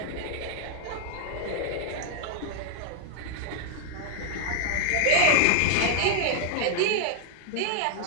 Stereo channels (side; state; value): both; different; correlation 0.00